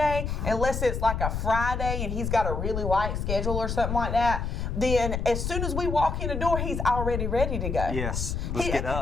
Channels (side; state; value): left; noise; rumble, 2 dB below the sound